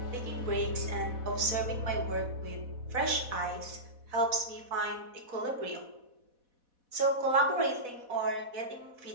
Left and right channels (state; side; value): late; left; 4.1 ms